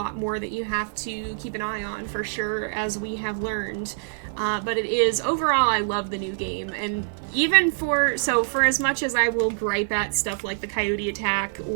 more that you have to keep an eye on for sure, as we have learned. But it is, overall, I love the new game, and even for as much as I will gripe at stuff like the coyote attack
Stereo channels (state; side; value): silent; left; 62 dB below the other